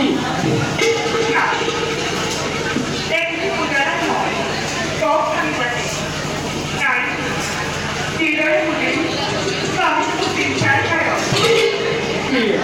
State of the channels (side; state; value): both; identical; correlation 1.00